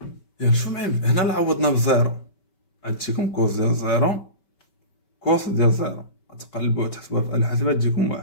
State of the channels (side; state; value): right; late; 5.2 ms